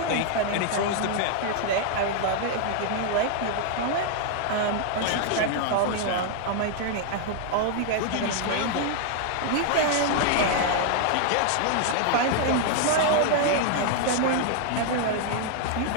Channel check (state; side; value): different; both; correlation 0.00